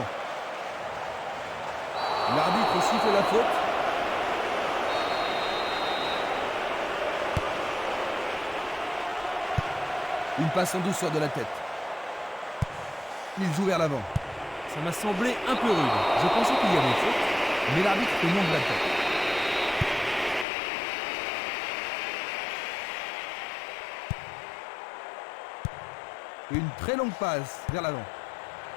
L'arbitre siffle la faute. Une passe en douceur de la tête. Il joue vers l'avant. Ça m'a semblé un peu rude. Je pensais qu'il y avait faute, Mais l'arbitre fait non de la tête. Une très longue passe vers l'avant.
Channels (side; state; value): right; drops out; at 20.5 s